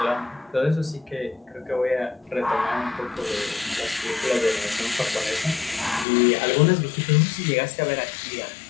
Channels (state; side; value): drops out; right; at 6.1 s